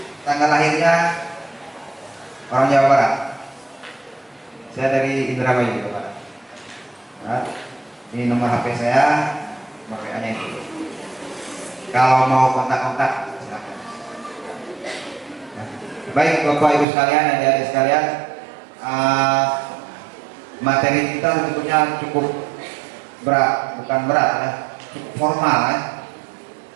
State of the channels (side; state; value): left; drops out; at 16.9 s